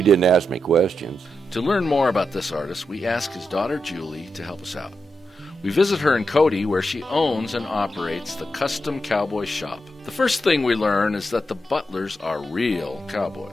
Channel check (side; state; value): both; normal; correlation 0.86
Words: didn't ask me questions. To learn more about this artist, we ask his daughter Julie to help us out. We visit her in Cody, where she owns and operates the Custom Cowboy Shop. The first thing we learn is that the Butlers are real